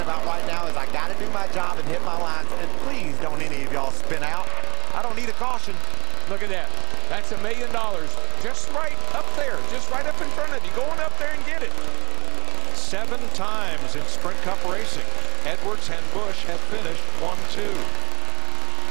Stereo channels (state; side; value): quieter; left; 21.2 dB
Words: about right now is I got to do my job and hit my lines. And please don't any of y'all spin out. I don't need a caution. Look at that. That's $1 million just right up there, just right up in front of you. Going up there and get it. 7 times in Sprint Cup racing, Edwards and Busch have finished 1-2.